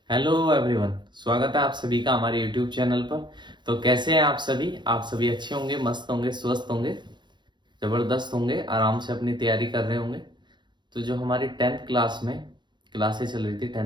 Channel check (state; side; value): late; left; 0.22 ms